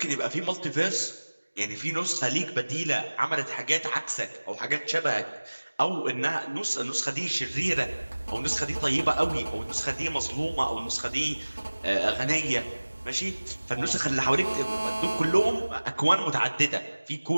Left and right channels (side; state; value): both; inverted; correlation -1.00